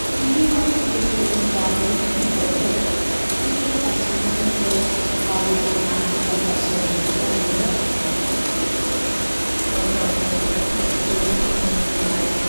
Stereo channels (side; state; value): both; inverted; correlation -1.00